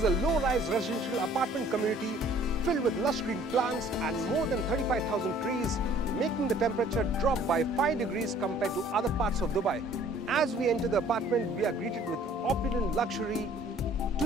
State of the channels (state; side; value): normal; both; correlation 0.55